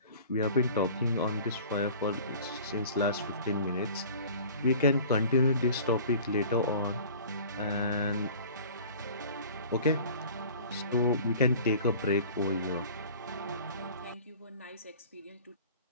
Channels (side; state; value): both; inverted; correlation -0.45